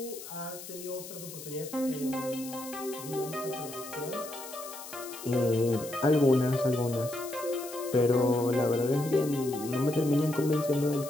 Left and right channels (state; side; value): noise; left; hiss, 13 dB below the sound